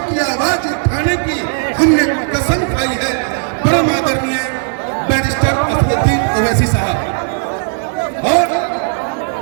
की आवाज उठाने की हमने कसम खाई है, परम आदरणीय बैरिस्टर असदुद्दीन ओवैसी साहब, और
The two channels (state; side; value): silent; left; 61 dB below the other